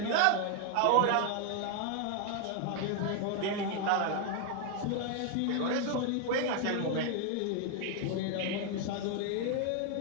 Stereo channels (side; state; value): both; different; correlation 0.01